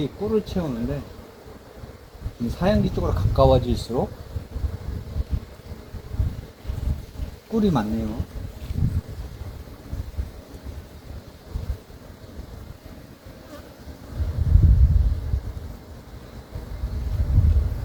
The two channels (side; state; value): both; identical; correlation 1.00